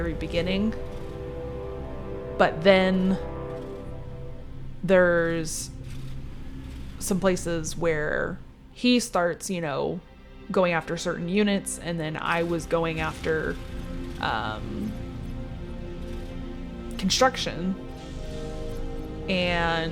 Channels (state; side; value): identical; both; correlation 1.00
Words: beginning. But then there's some places where he starts, going after certain units, and then I was going after construction. And